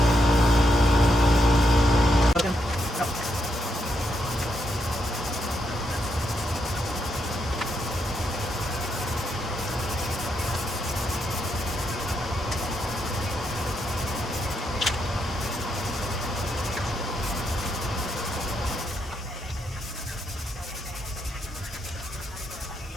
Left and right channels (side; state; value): both; normal; correlation 0.80